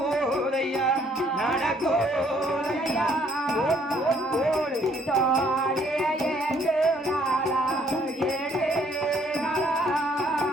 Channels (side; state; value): both; normal; correlation 0.64